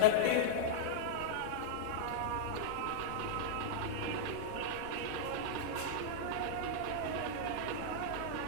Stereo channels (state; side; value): different; both; correlation -0.02